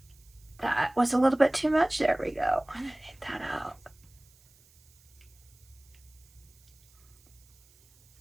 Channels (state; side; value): noise; right; hiss, 29 dB below the sound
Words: that was a little bit too much. There we go. I'm gonna take that out.